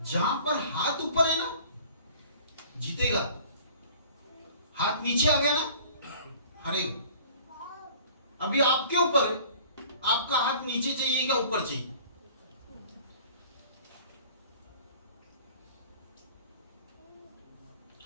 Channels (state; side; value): inverted; both; correlation -0.49